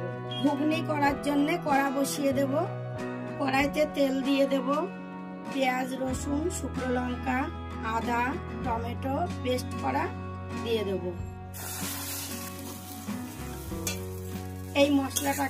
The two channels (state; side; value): identical; both; correlation 1.00